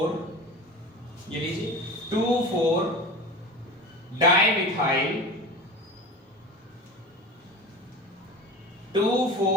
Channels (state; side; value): normal; both; correlation 0.33